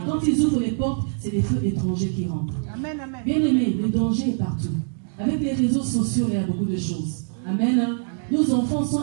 quand ils ouvrent les portes, c'est les feux étrangers qui rentrent. Amen, amen. Bien aimé, le danger est partout. Avec les réseaux sociaux, il y a beaucoup de choses. Amen. Hein? Nos enfants sont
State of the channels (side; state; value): left; silent; digital silence